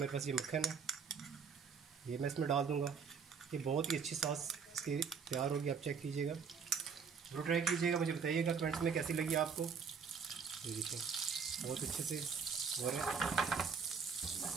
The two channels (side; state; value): left; quieter; 6.1 dB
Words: पास ये मक्खन है, ये मैं इसमें डाल दूंगा। ये बहुत ही अच्छी सॉस इसकी तैयार होगी, आप चेक कीजिएगा, जरूर ट्राई कीजिएगा, मुझे बताइएगा कमेंट्स में कैसी लगी आपको। ये देखिए बहुत अच्छे से हो रहा है हमारा।